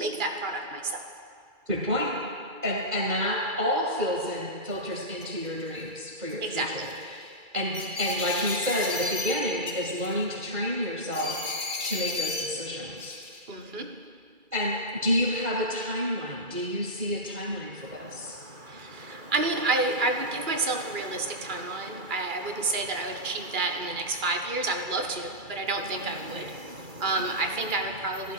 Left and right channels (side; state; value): left; late; 2.3 ms